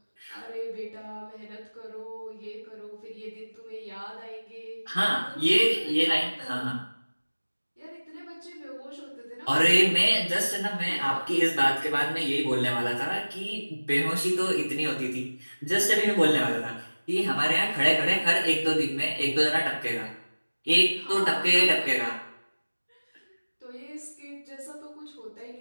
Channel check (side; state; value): both; inverted; correlation -1.00